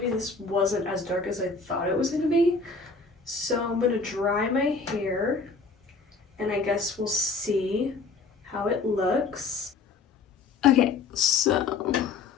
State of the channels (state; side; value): quieter; right; 4.4 dB